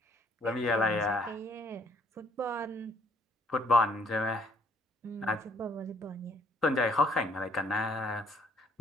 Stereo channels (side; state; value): both; normal; correlation 0.63